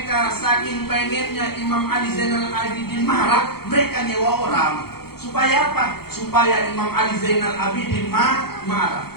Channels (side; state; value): right; late; 0.96 ms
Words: saking pengennya Imam Ali Zainal Abidin marah, mereka nyewa orang. Supaya apa? Supaya Imam Ali Zainal Abidin marah.